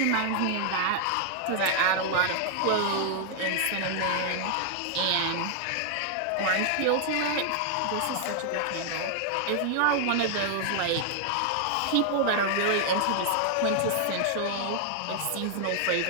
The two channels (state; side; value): different; both; correlation 0.00